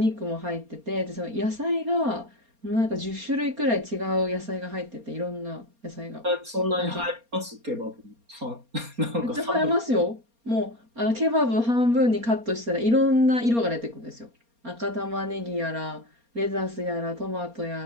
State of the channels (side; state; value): left; late; 4.3 ms